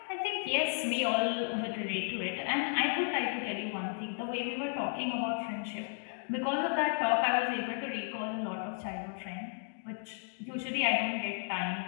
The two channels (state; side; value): silent; right; 55 dB below the other